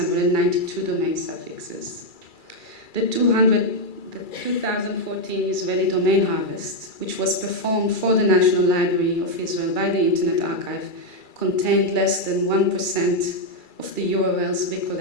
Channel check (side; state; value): right; late; 2.3 ms